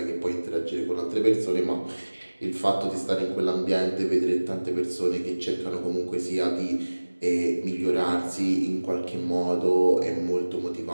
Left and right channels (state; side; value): inverted; both; correlation -1.00